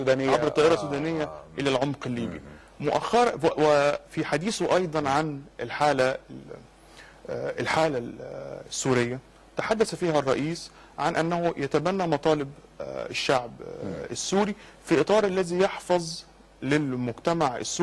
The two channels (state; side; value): identical; both; correlation 1.00